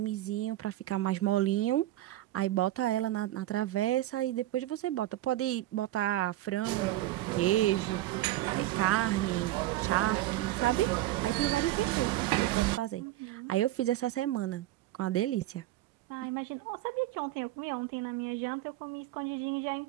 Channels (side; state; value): left; quieter; 15.1 dB